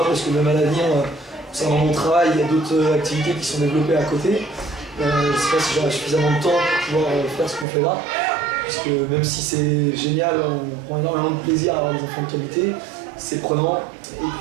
parce que même à l'avenir, concernant mon travail, il y a d'autres activités qui sont développées à côté. Je ne sais pas si j'aurai suffisamment de temps pour pouvoir faire ce qu'on fait là. Puisque même si c'est génial, on prend énormément de plaisir à avoir des enfants de qualité, c'est prenant. Et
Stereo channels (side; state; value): left; drops out; at 7.7 s